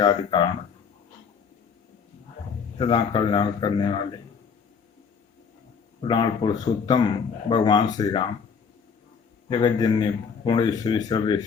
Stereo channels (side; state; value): right; quieter; 6.1 dB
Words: कारण सदा कल्याण करने वाले पुराण पुरुषोत्तम भगवान श्री राम जगत जननी पूर्णेश्वरी